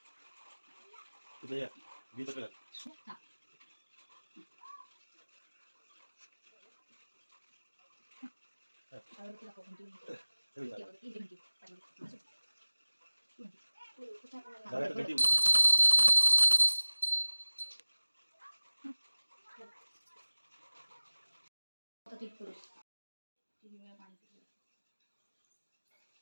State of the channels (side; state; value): both; inverted; correlation -1.00